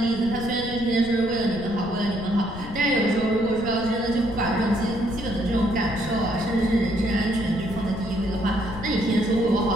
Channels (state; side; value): noise; left; rumble, 12 dB below the sound